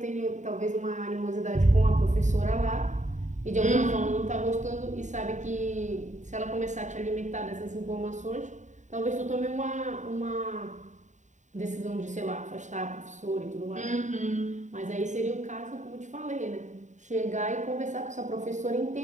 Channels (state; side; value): late; left; 0.35 ms